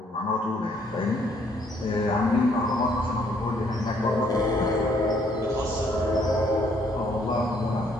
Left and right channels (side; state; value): both; normal; correlation 0.67